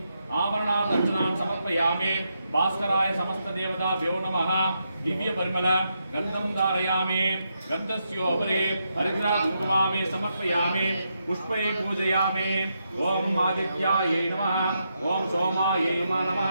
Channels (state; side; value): inverted; both; correlation -0.82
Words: आवरणादर्शनान् समर्पयामि भास्कराय समस्त देवताभ्यो नमः दिव्य परिमल गन्धं धारयामि गन्धस्योपरि हरिद्रा कुङ्कुमामे समर्पयामि पुष्पे पूजयामि ओम आदित्याय नमः ओम सोमाय